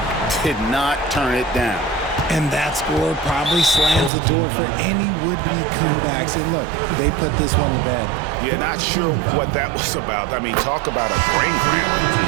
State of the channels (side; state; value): left; drops out; at 4.1 s